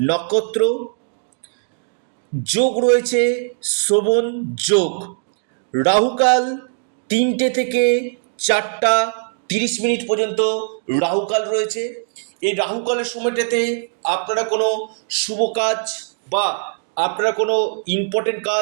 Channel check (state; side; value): silent; left; digital silence